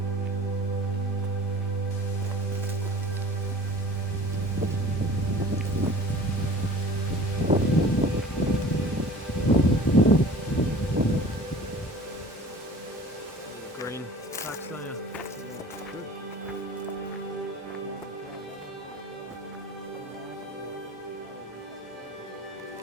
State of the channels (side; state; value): both; normal; correlation 0.43